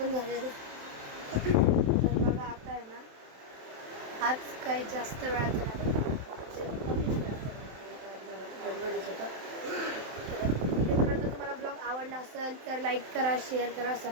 झालेलं आहे. तर बघा आता आहे ना आज काही जास्त वेळाचं नाही, कमीच गडबडीच होतं. तर तुम्हाला ब्लॉग आवडला असेल तर लाईक करा, शेअर करा,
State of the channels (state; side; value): late; left; 27 ms